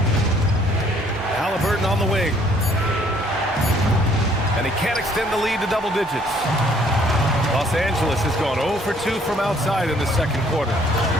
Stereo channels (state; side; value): normal; both; correlation 0.62